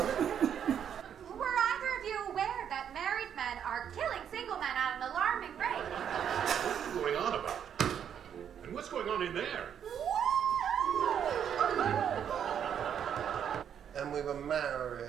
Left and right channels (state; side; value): quieter; left; 8.7 dB